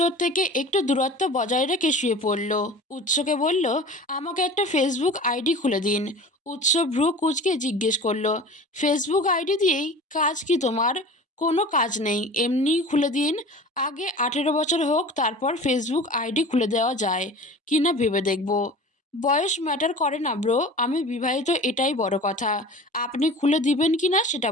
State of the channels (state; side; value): normal; both; correlation 0.38